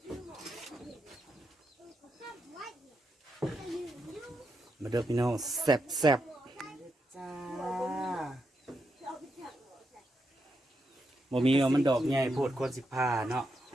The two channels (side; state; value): both; normal; correlation 0.83